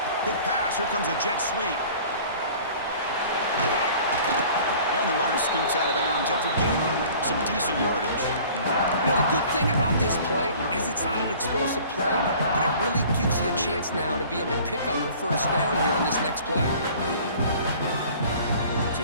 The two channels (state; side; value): inverted; both; correlation -0.48